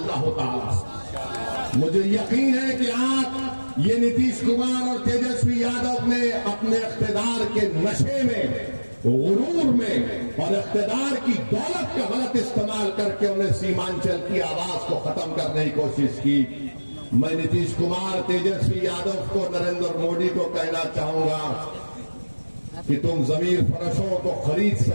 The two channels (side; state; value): both; inverted; correlation -1.00